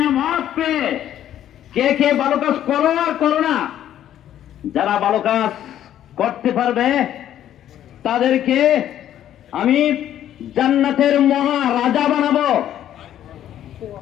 পেয়ে কে কে ভালো কাজ করো আর করো না। যারা ভালো কাজ করতে পারবে তাদেরকে আমি জান্নাতের মহারাজা বানাবো।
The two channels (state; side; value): quieter; right; 11.3 dB